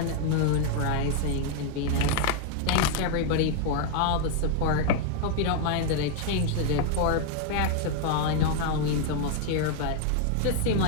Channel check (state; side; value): different; both; correlation 0.00